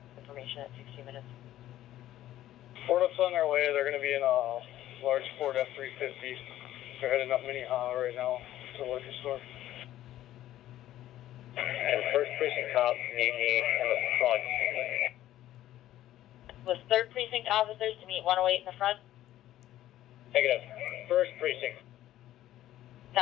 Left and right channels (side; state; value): right; quieter; 13.5 dB